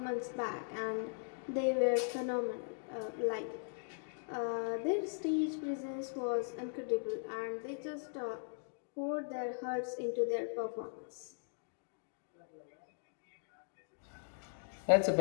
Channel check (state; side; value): silent; right; digital silence